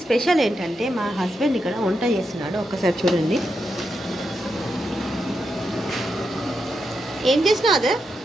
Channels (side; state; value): both; normal; correlation 0.85